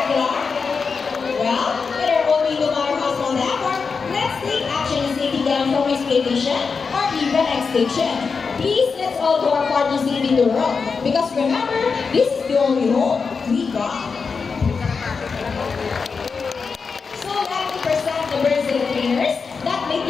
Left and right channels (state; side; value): quieter; right; 5.2 dB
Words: Well, with our own no matter how small they are, let's take action in saving them from exploitation or even extinction. Please, let's all do our part to saving the world. Because remember, this is the only home we got. So let me present the birds and the trainers that make